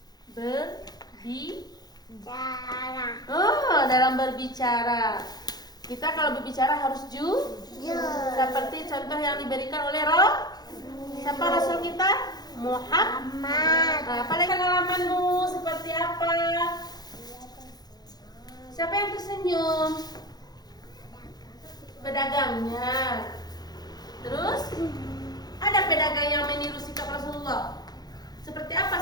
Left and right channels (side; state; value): right; late; 0.19 ms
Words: Cara. Dalam berbicara. Kita kalau berbicara harus Jujur. seperti contoh yang diberikan oleh siapa Rasul kita? Muhammad. Amat. Apalagi pengalamanmu seperti apa? Siapa yang tersenyum? Pedagangnya. Terus ada pedagang yang meniru sikap Rasulullah. Seperti